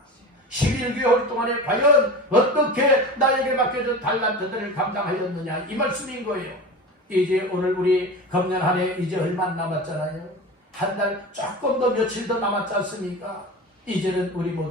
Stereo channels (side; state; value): both; normal; correlation 0.31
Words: 11개월 동안에 과연 어떻게 나에게 맡겨준 달란트들을 감당하였느냐 이 말씀인 거예요. 이제 오늘 우리 금년 한 해 이제 얼마 안 남았잖아요. 한 달 조금 더 며칠 더 남았지 않습니까? 이제는 우리